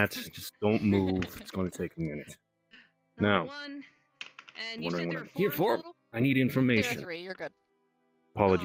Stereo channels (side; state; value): both; identical; correlation 1.00